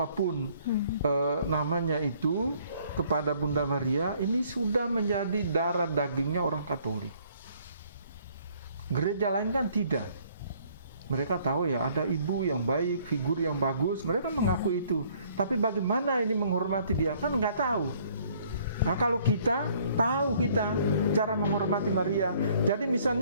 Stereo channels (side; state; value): both; inverted; correlation -0.61